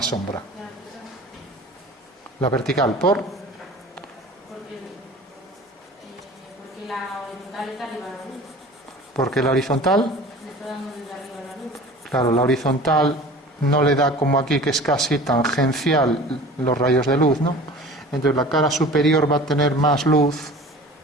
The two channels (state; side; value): normal; both; correlation 0.41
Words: sombra? La vertical, ¿por? Porque la horizontal está arriba de la luz. Porque la horizontal, Le está dando desde arriba la luz. claro, la horizontal no le da como aquí, que es casi tangencial los rayos de luz, ¿no? Entonces la cara superior va a tener más luz,